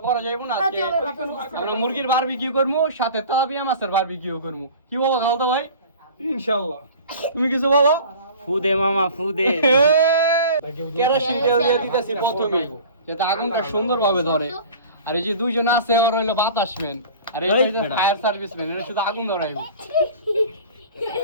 করা যাবে না আজকে আমরা মুরগির বারবিকিউ করবো সাথে তেলাপিয়া মাছের বারবিকিউ করবো কি বলো খালতো ভাই ইনশাআল্লাহ তুমি কিছু বলো ফু দে মামা ফু দে কেরোসিন তেল দিয়ে দিতেছি প্রথমে যাতে আগুনটা সুন্দরভাবে ধরে আর এই যে দুইজন আছে আর হইলো বাতাসম্যান আর এই যে ফায়ার সার্ভিসম্যান এরা শুধু আগুন ধরাইবে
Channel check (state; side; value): inverted; both; correlation -0.42